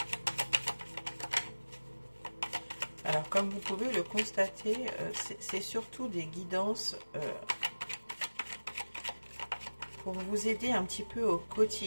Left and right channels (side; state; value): both; inverted; correlation -1.00